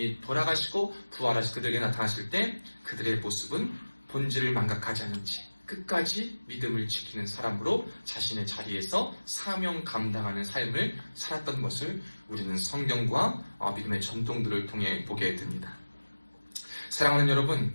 돌아가시고 부활하시 그들에게 나타나실 때 그들의 모습은 본질을 망각하지 않은 채 끝까지 믿음을 지키는 사람으로 자신의 자리에서 사명 감당하는 삶을 살았던 것을 우리는 성경과 믿음의 전통들을 통해 보게 됩니다. 사랑하는 여러분,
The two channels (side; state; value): both; inverted; correlation -1.00